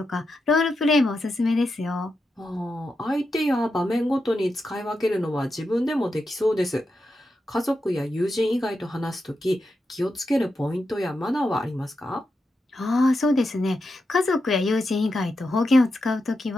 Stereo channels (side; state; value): both; normal; correlation 0.87